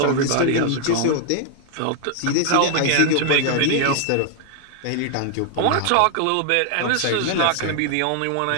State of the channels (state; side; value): different; both; correlation 0.00